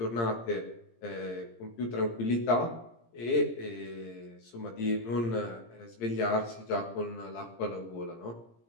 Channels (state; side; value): late; right; 17 ms